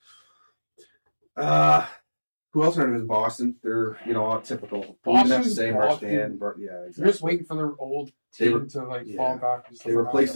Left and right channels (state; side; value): inverted; both; correlation -1.00